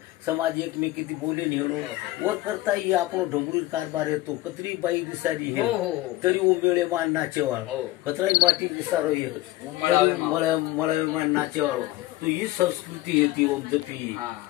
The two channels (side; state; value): right; quieter; 17.2 dB